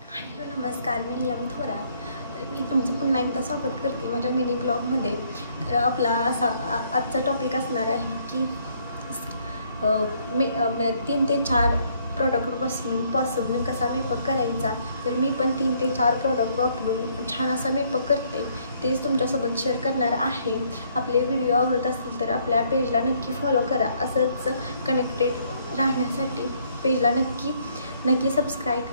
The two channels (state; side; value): inverted; both; correlation -0.67